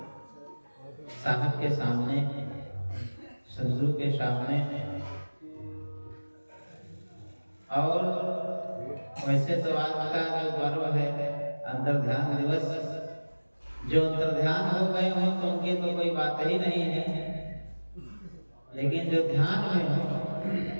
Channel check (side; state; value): both; inverted; correlation -1.00